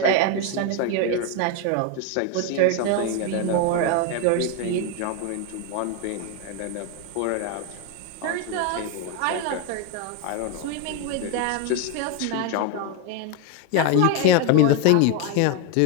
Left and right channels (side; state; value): both; different; correlation 0.02